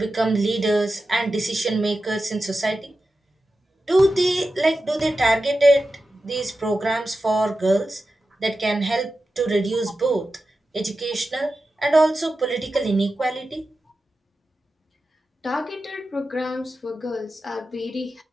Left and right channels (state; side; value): normal; both; correlation 0.92